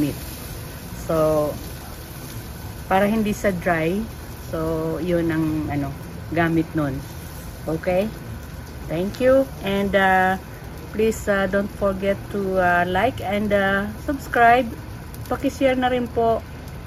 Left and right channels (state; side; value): identical; both; correlation 1.00